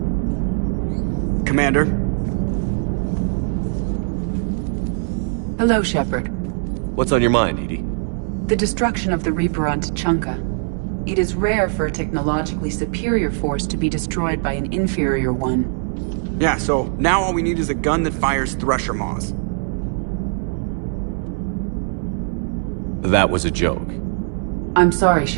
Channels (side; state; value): left; silent; 60 dB below the other